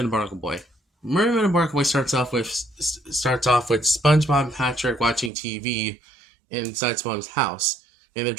Barnacle Boy. Mermaid and Barnacle Boy starts off with SpongeBob and Patrick watching TV inside SpongeBob's house, and they're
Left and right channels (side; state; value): left; drops out; at 5.3 s